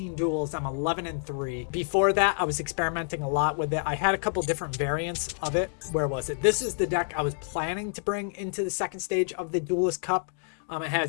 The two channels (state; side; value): silent; right; digital silence